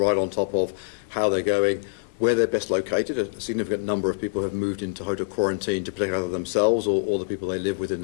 on top of how they're going, where they're best located. A significant number of people have moved into hotel quarantine to protect either themselves or the people they live with in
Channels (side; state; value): right; silent; digital silence